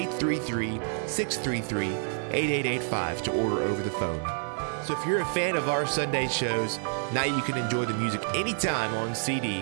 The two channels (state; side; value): silent; left; 59 dB below the other